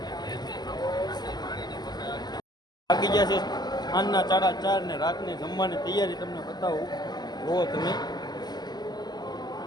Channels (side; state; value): right; late; 0.20 ms